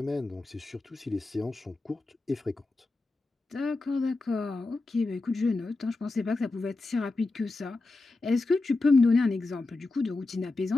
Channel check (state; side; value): quieter; right; 3.3 dB